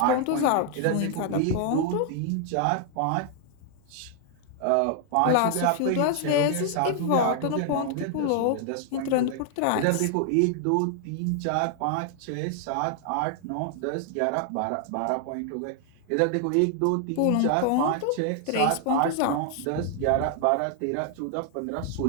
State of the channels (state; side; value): different; both; correlation 0.00